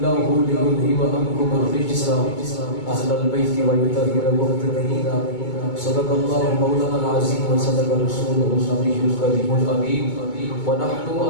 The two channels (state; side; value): late; right; 2.2 ms